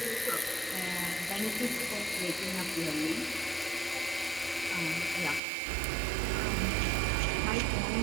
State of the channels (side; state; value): left; drops out; at 5.4 s